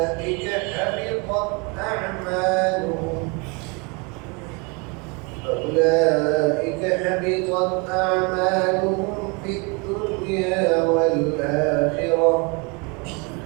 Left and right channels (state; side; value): quieter; left; 30.8 dB